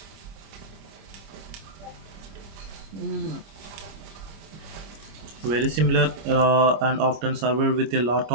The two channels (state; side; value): late; left; 25 ms